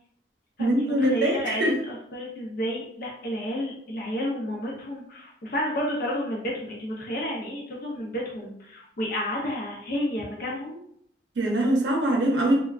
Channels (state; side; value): normal; both; correlation 0.57